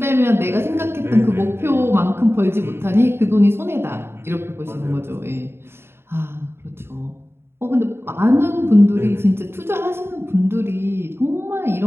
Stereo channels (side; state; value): left; late; 0.12 ms